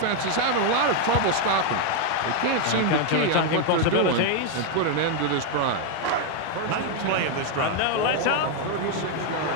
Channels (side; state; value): both; different; correlation 0.00